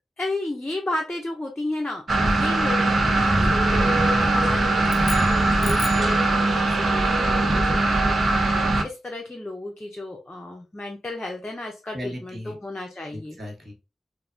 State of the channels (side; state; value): both; normal; correlation 0.89